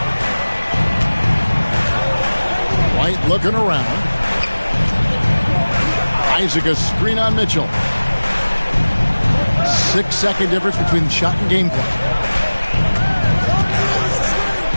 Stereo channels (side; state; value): both; inverted; correlation -1.00